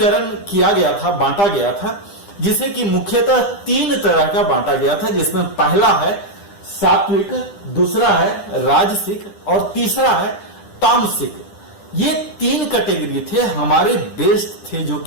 किया गया था, बांटा गया था, जिसे कि मुख्यतः 3 तरह का बांटा गया था, जिसमें पहला है सात्विक, दूसरा है राजसिक और तीसरा है तामसिक। ये 3 कैटेगरी थे, हमारे बेस्ट थे, जो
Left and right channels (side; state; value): right; late; 10 ms